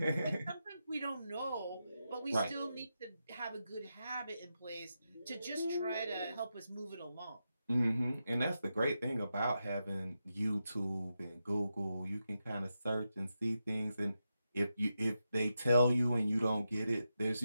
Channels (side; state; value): both; inverted; correlation -0.88